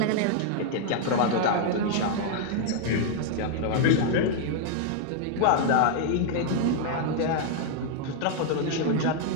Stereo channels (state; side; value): different; both; correlation -0.01